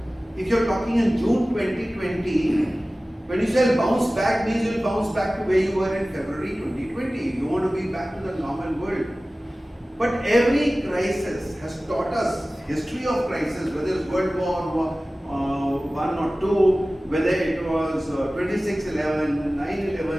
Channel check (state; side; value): normal; both; correlation 0.97